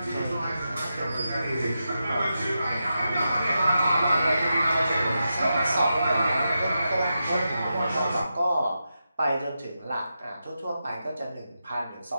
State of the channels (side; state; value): both; inverted; correlation -0.88